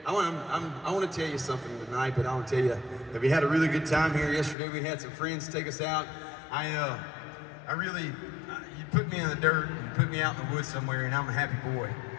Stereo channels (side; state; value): right; drops out; at 4.5 s